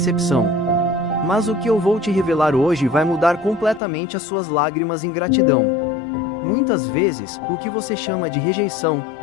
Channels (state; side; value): drops out; right; at 3.8 s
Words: Mas o que eu vou te revelar hoje vai mudar completamente as suas lágrimas em gratidão. Muitas vezes, o que você chama de rejeição,